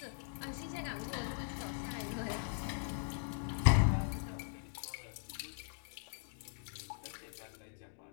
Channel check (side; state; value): right; silent; digital silence